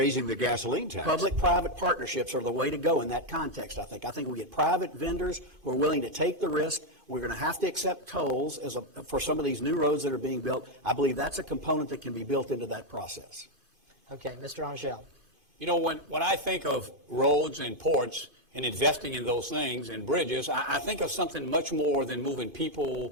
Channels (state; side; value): late; left; 2.5 ms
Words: the gasoline tax? Public-private partnerships are the way to go in that context, I think. I think we get private vendors who are willing to take the risk. We're going to have to accept tolls for some of these new roads that are being built. I believe that's a component that can be built into that process. Okay, Mr. Angel. You know, when I think of roads and ports and investing in those things and bridges, I think of something much more than moving people